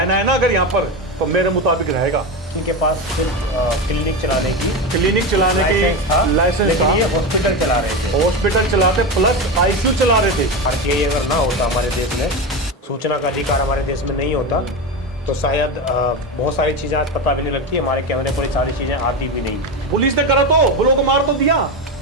ना अगर यहाँ पर तो मेरे मुताबिक रहेगा। इनके पास सिर्फ क्लिनिक चलाने की लाइसेंस था। ये हॉस्पिटल चला रहे थे, हॉस्पिटल चलाते प्लस आईसीयू चला रहे थे। आरटीआई अगर ना होता हमारे देश में, सूचना का अधिकार हमारे देश में नहीं होता तो शायद बहुत सारी चीजें आज पता भी नहीं लगती, हमारे कैमरे पर सारी चीजें आती भी नहीं। पुलिस ने करा तो ब्लॉक मार तो दिया,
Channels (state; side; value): normal; both; correlation 0.18